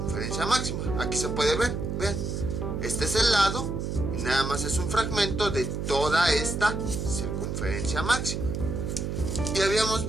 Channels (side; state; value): right; noise; hum, 3 dB below the sound